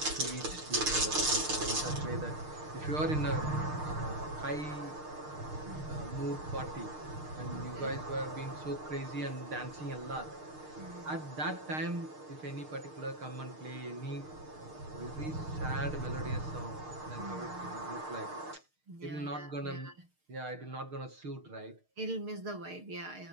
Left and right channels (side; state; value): left; late; 6.5 ms